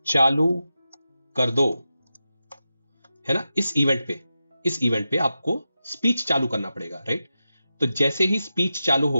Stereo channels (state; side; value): inverted; both; correlation -0.91